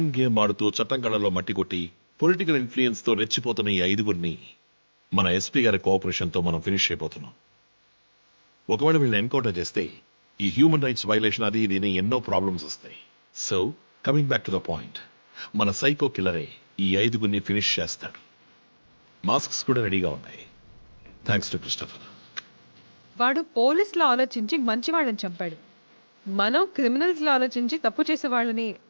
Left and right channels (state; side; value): inverted; both; correlation -1.00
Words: గేమ్ ఆడుతూ చట్టం కళ్ళలో మట్టి కొట్టి పొలిటికల్ ఇన్ఫ్లుయెన్స్తో రెచ్చిపోతున్న ఈ 5గురిని మన ఎస్పీ గారి కోఆపరేషన్తో మనం ఫినిష్ అయిపోతున్నాం. ఒకవేళ వీళ్ళని ఎన్కౌంటర్ చేస్తే ఈ హ్యూమన్ రైట్స్ వైలేషన్ అది ఇది ఎన్నో ప్రాబ్లమ్స్ వస్తాయి. So coming back to the point, మన సైకో కిల్లరే ఈ 5గురిని ఫినిష్ చేస్తాడు. మాస్క్స్ కూడా రెడీగా ఉన్నాయి. Thanks to Christopher. వాడు పోలీసులో ఆలోచించి మంచి వాళ్ళని చంపాడు. మనం క్రిమినల్స్లో ఆలోచించి తప్పు చేసే వాళ్ళని.